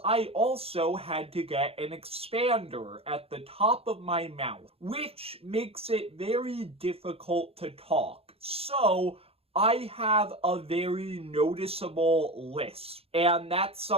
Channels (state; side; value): late; left; 0.28 ms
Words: I also had to get an expander at the top of my mouth, which makes it very difficult to talk. So, I have a very noticeable lisp, and that's